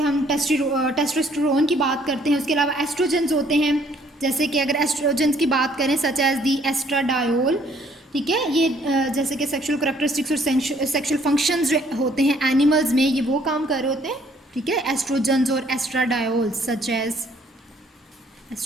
टेस्टोस्टेरोन की बात करते हैं। उसके अलावा एस्ट्रोजेंस होते हैं, जैसे कि अगर एस्ट्रोजेंस की बात करें सच एज दी एस्ट्राडायोल, ठीक है। ये जैसे कि सेक्सुअल करैक्टरिस्टिक्स और सेक्सुअल फंक्शंस जो होते हैं एनिमल्स में, ये वो काम कर रहे होते हैं, ठीक है, एस्ट्रोजेंस और एस्ट्राडायोल, सच एज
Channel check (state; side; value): normal; both; correlation 0.62